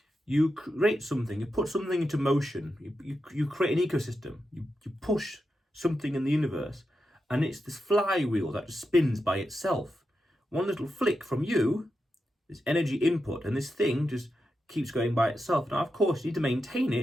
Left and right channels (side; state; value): both; normal; correlation 0.88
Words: you create something, you put something into motion, you create an ecosystem, you push something in the universe, and it's this flywheel that just spins by itself. One little flick from you, this energy input, and this thing just keeps going by itself. Now, of course, you need to maintain